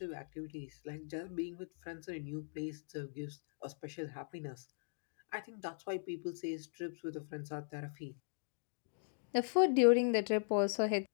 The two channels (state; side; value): silent; right; digital silence